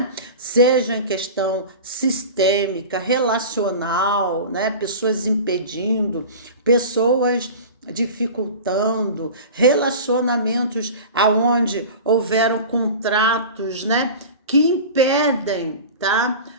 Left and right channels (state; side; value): inverted; both; correlation -0.34